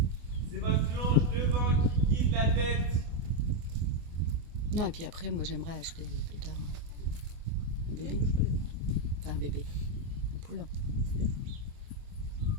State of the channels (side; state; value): left; late; 24 ms